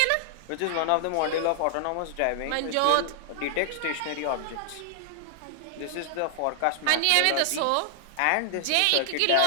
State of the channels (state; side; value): different; both; correlation -0.01